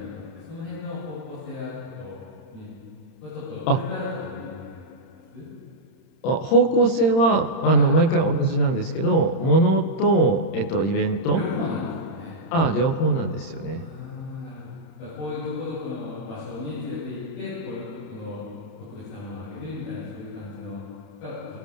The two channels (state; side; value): late; right; 31 ms